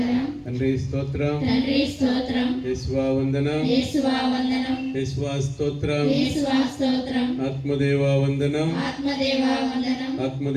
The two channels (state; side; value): identical; both; correlation 1.00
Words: తండ్రి స్తోత్రం, తండ్రి స్తోత్రం, యేసువా వందనం, యేసువా వందనం, యేసువా స్తోత్రం, యేసువా స్తోత్రం, ఆత్మదేవా వందనం, ఆత్మదేవా వందనం,